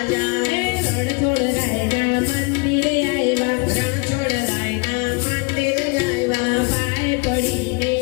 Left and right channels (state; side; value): quieter; right; 30.8 dB